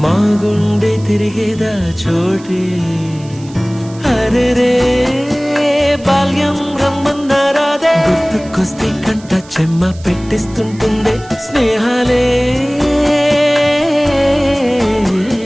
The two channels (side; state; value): right; noise; hiss, 23 dB below the sound